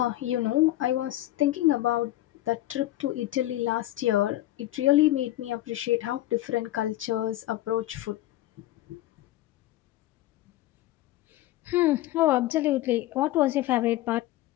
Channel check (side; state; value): right; quieter; 15.2 dB